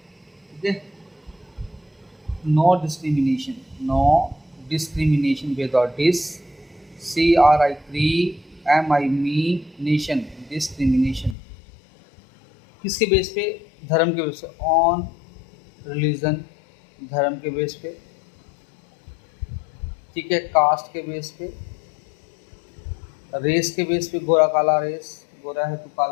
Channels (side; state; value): right; drops out; at 11.4 s